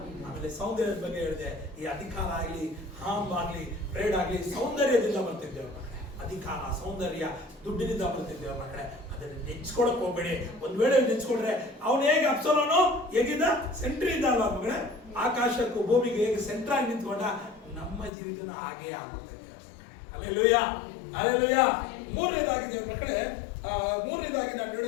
ಆಮೇಲೆ ಸೌಂದರ್ಯದ ಬಗ್ಗೆ ಹೇಳಿದೆ. ಈ ಅಧಿಕಾರ ಆಗಲಿ, ಹಾಮ್ ಆಗಲಿ, ಪ್ರೇಡ್ ಆಗಲಿ ಸೌಂದರ್ಯದಿಂದ ಬರ್ತಿದ್ದೆ ಅವ್ರ ಮಕ್ಕಳೇ. ಅಧಿಕಾರ, ಸೌಂದರ್ಯ ದುಡ್ಡಿನಿಂದ ಬರ್ತಿದ್ದೆ ಅವ್ರ ಮಕ್ಕಳೇ. ಅದನ್ನು ನೆಚ್ಕೊಳಕ್ ಹೋಗ್ಬೇಡಿ. ಒಂದ್ ವೇಳೆ ನೆಚ್ಕೊಂಡ್ರೆ ಅವನು ಹೇಗೆ ಅಪ್ಸಲೋನು ಹೇಗಿದ್ದ? ಸೆಂಟ್ರಿ ಇದ್ದ ಅಲ್ವಾ ಮಕ್ಕಳೇ? ಆಕಾಶಕ್ಕೂ ಭೂಮಿಗೆ ಹೇಗೆ ಸೆಂಟ್ರ್ ಆಗಿ ನಿಂತ್ಕೊಂಡ, ನಮ್ಮ ಜೀವಿತನ ಹಾಗೇ ಆಗುತ್ತೆ. Hallelujah, hallelujah. ಮೂರನೇದಾಗಿ ದೇವರ ಮಕ್ಕಳೇ, ಮೂರನೇದಾಗಿ ನಾನು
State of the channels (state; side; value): drops out; right; at 18.1 s